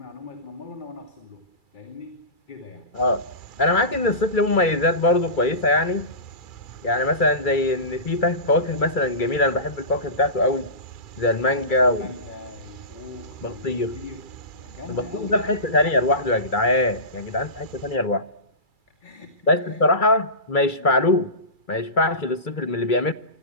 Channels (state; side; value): late; right; 2.3 ms